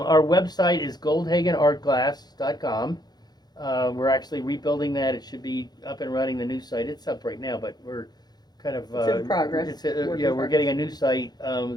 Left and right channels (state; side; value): late; right; 0.20 ms